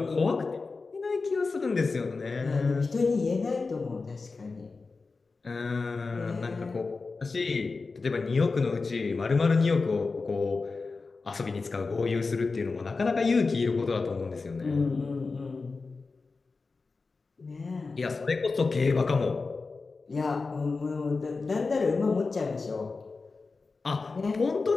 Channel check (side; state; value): right; quieter; 4.1 dB